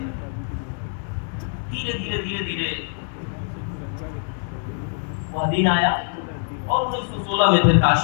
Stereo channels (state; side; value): silent; right; digital silence